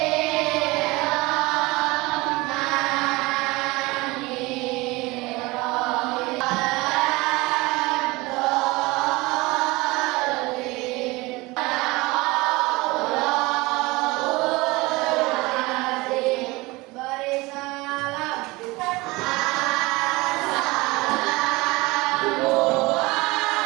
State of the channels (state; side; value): quieter; left; 22.5 dB